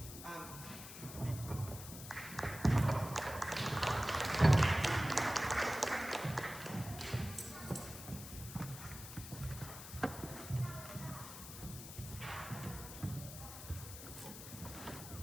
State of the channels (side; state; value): left; noise; hiss, 12 dB below the sound